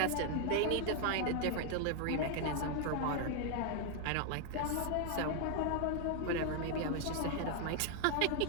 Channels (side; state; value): both; different; correlation 0.00